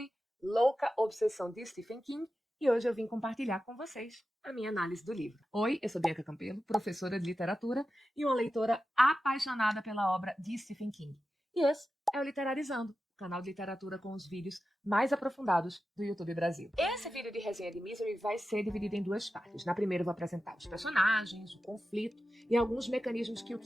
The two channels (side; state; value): both; normal; correlation 0.92